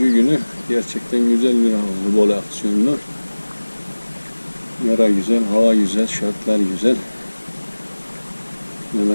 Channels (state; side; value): inverted; both; correlation -1.00